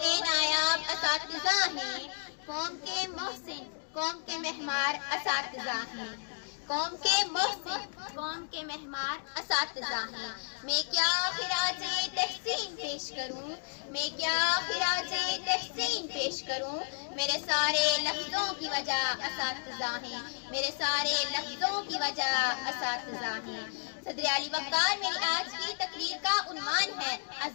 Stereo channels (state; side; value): silent; right; digital silence